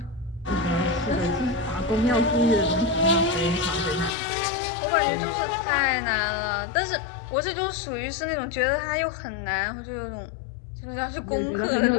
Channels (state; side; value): drops out; right; at 4.2 s